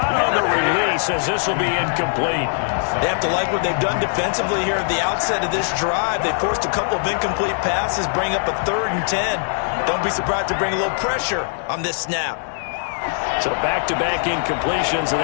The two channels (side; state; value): right; silent; digital silence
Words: on the release as this will be incomplete. They have to like what they've done defensively here at the outset of this drive. They forced a couple of incomplete passes, bring up a 3rd and 10. Don't be surprised to bring a little pressure on this snap. So back-to-back incompletions, and